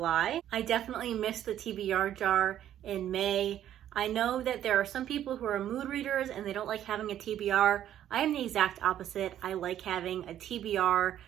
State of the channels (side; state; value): left; quieter; 11.3 dB